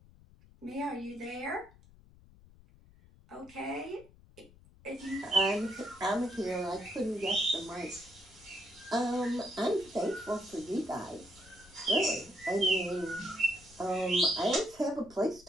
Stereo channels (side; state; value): left; noise; rumble, 24 dB below the sound